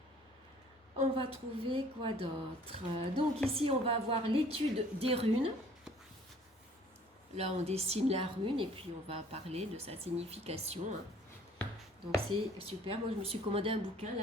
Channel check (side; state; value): both; normal; correlation 0.55